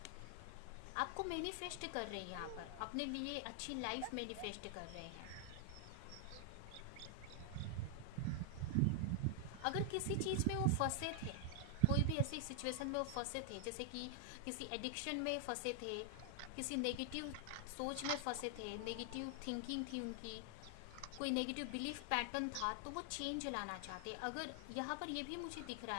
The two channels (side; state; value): both; different; correlation 0.00